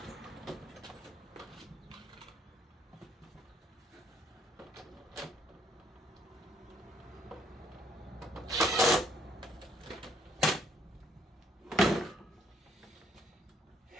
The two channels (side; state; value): both; normal; correlation 0.67